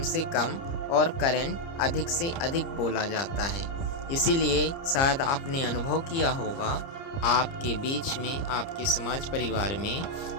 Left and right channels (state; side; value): late; right; 30 ms